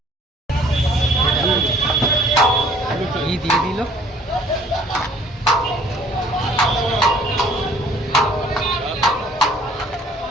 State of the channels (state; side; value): normal; both; correlation 0.56